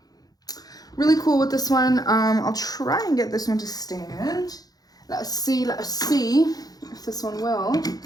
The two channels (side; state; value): right; late; 0.19 ms